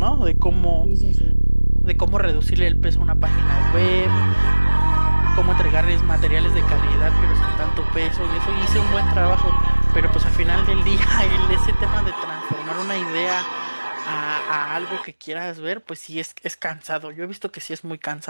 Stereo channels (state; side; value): inverted; both; correlation -1.00